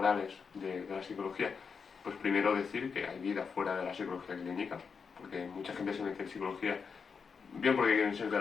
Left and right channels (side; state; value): right; quieter; 5.8 dB